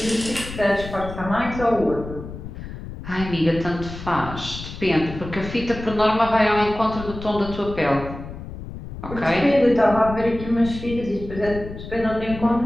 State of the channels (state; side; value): noise; left; rumble, 11 dB below the sound